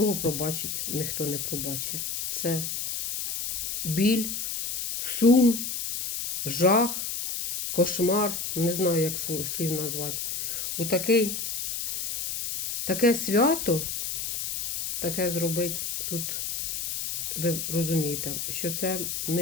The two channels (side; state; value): left; noise; hiss, 3 dB below the sound